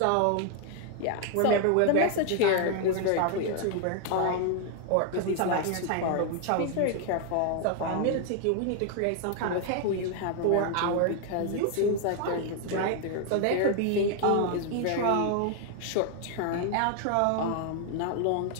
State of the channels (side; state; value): both; different; correlation 0.00